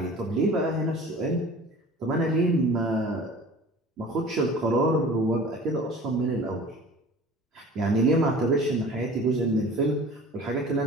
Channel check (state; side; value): normal; both; correlation 0.43